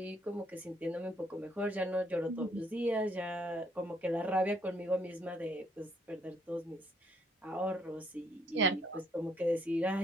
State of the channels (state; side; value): normal; both; correlation 0.68